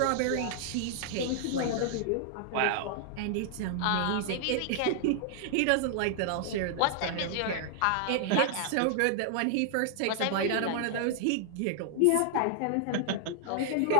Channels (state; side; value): different; both; correlation 0.00